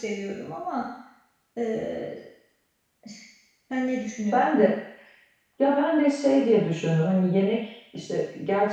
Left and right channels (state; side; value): identical; both; correlation 1.00